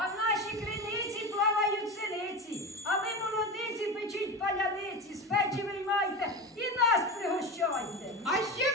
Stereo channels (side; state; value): both; normal; correlation 0.25